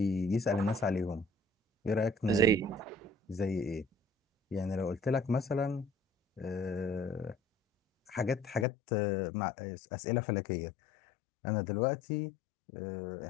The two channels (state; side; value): drops out; right; at 8.7 s